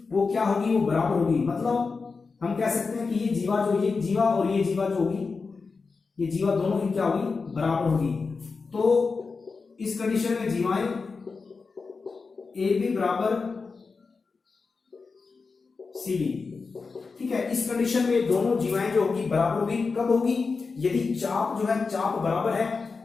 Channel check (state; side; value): quieter; right; 4.6 dB